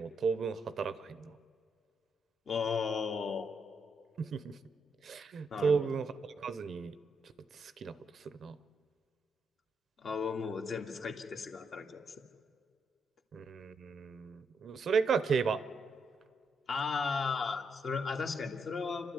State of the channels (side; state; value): both; normal; correlation 0.79